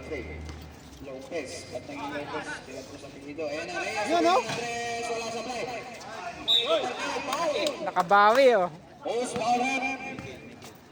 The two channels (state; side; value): identical; both; correlation 1.00